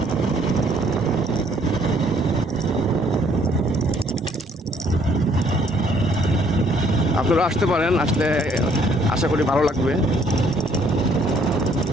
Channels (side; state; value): both; normal; correlation 0.64